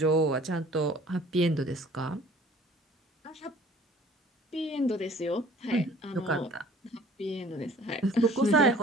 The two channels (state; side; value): normal; both; correlation 0.52